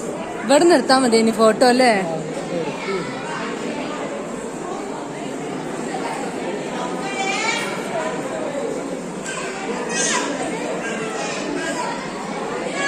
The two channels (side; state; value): both; identical; correlation 1.00